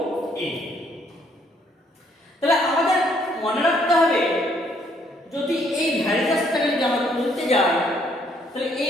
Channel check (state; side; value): normal; both; correlation 0.68